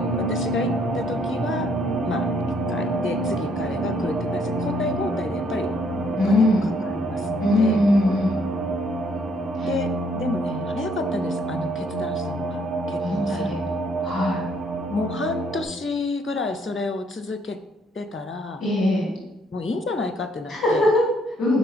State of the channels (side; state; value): both; normal; correlation 0.67